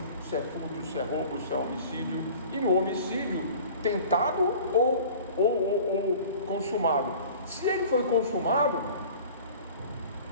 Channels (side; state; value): both; inverted; correlation -0.44